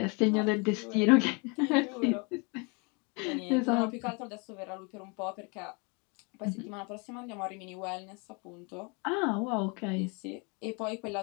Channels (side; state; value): right; quieter; 32.0 dB